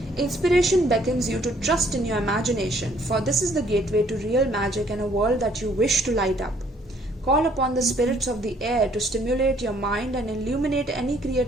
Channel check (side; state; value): both; normal; correlation 0.63